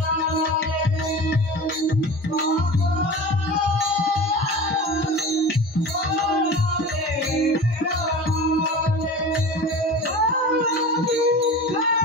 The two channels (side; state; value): both; normal; correlation 0.34